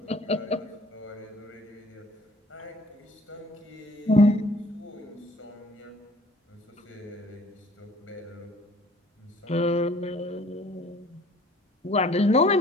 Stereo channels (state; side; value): normal; both; correlation 0.55